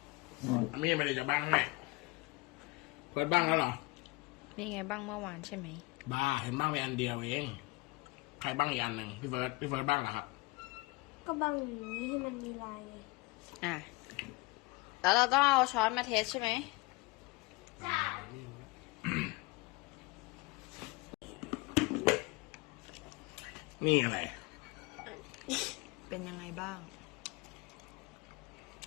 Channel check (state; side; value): quieter; right; 24.2 dB